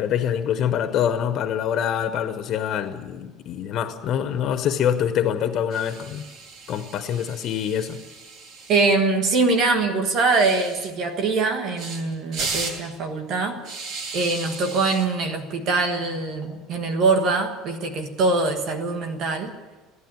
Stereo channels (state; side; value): normal; both; correlation 0.31